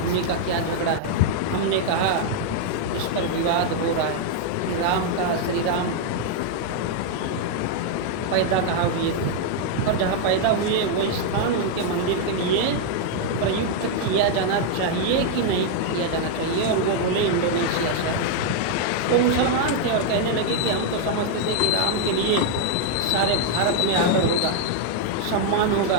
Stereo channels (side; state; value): both; different; correlation 0.00